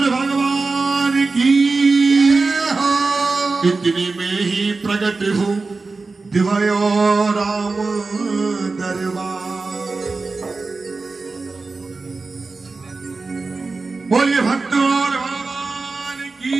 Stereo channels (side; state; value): left; quieter; 3.9 dB